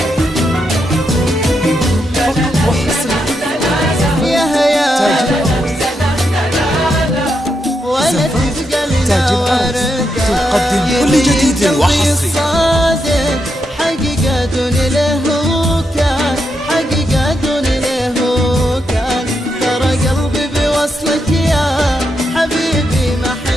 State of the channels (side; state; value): both; normal; correlation 0.83